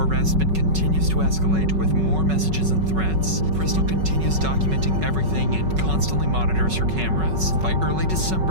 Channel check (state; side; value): late; left; 5.4 ms